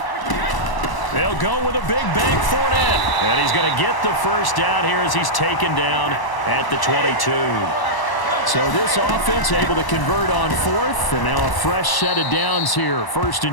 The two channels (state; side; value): late; right; 1.0 ms